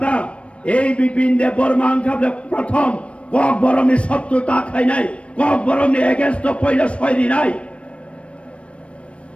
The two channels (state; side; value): late; right; 0.061 ms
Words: এই বিপিন দেব বর্মা আং খাবলে প্রথম কক বরমনি শত্রুতা খাই নাই কক বরমনি এগেন্স্ট পয়লা সয়রি নাই